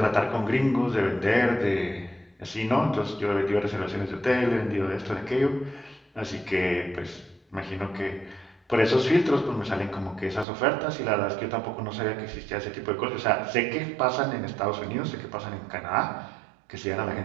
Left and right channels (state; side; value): drops out; left; at 10.5 s